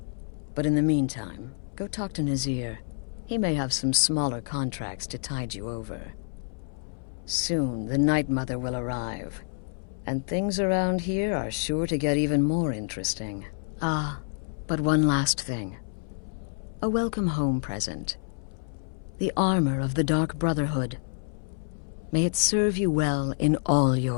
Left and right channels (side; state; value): right; silent; 59 dB below the other